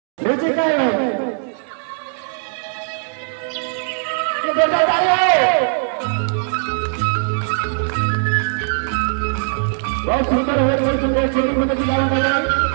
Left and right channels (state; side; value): silent; left; digital silence